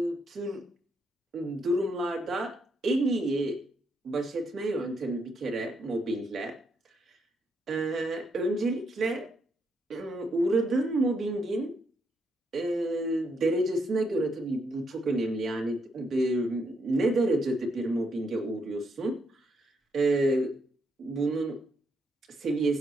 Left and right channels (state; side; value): normal; both; correlation 0.77